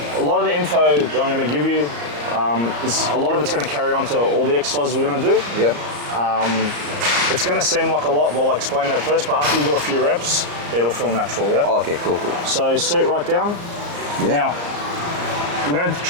a lot of the info that I'm gonna give you, a lot of it's gonna carry on to all the exercises we're gonna do. Yeah. It's gonna seem like a lot while I explain it at first, but after you do a few reps, it'll feel natural, yeah? Oh, okay, cool. So sit right down. Yeah. Now, we're gonna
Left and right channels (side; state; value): left; late; 34 ms